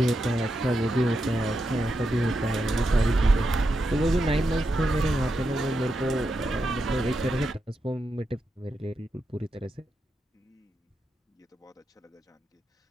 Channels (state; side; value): normal; both; correlation 0.86